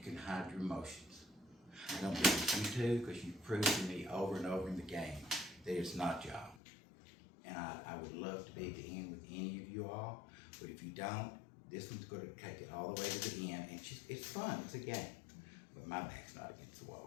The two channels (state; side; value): drops out; right; at 6.6 s